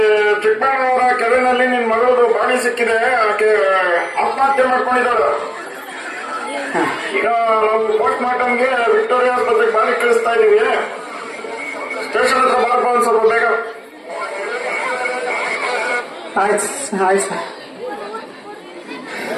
ಚಿಕ್ಕಬಳ್ಳಾಪುರ ಕೆರೆನಲ್ಲಿ ನಿನ್ ಮಗಳದು ಬಾಡಿ ಸಿಕ್ಕಿದೆ. ಆಕೆ ಆತ್ಮಹತ್ಯೆ ಮಾಡ್ಕೊಂಡಿದ್ದಾಳು. ಈಗ ನಾವು ಪೋಸ್ಟ್ ಮಾರ್ಟಮ್ಗೆ ವಿಕ್ಟೋರಿಯಾ ಆಸ್ಪತ್ರೆಗೆ ಬಾಡಿ ಕಳಿಸ್ತಾ ಇದೀವಿ. ಸ್ಟೇಷನ್ ಹತ್ರ ಬಾರಪ್ಪ ಒಂದ್ ಸ್ವಲ್ಪ ಬೇಗ. ಆಯ್ತು ಆಯ್ತು ಸರ್.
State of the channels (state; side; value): identical; both; correlation 1.00